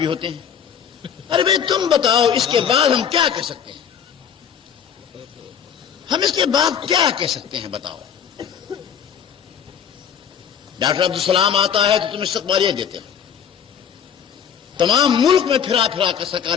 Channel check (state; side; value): quieter; right; 8.1 dB